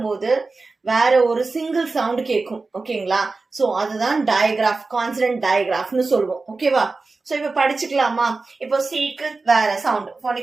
வேற ஒரு சிங்கிள் சவுண்ட் கேட்கும். ஓகேங்களா? சோ அதுதான் டயக்ராஃப், கான்சனன்ட் டயக்ராஃப்னு சொல்லுவோம். ஓகேவா? சோ இப்ப படிச்சுக்கலாமா? இப்போ சீக்கு வேற சவுண்ட்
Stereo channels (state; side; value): quieter; left; 3.8 dB